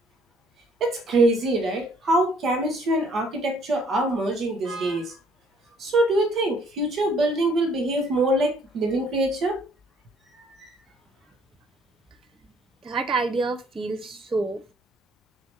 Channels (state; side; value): normal; both; correlation 0.62